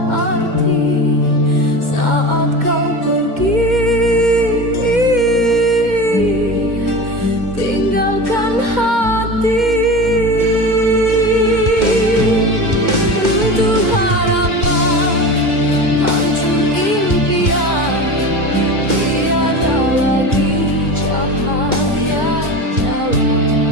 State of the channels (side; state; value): left; late; 2.1 ms